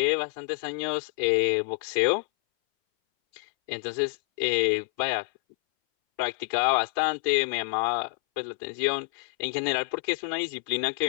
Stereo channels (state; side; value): silent; right; 59 dB below the other